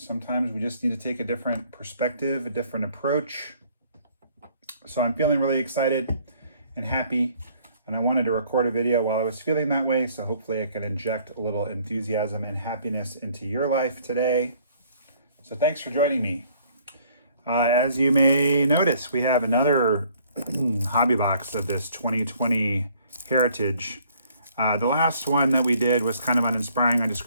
we just need to take a different perspective, a different approach. So I'm feeling really excited and happy. And I wanted to record a video while I was feeling that way, so hopefully I can inject a little enthusiasm and happiness into your life today. So thanks for joining me. As you may notice, we have another hobby box of this 2020 Heritage. The last one that we did was kind of uninspiring. I just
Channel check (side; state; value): both; inverted; correlation -0.61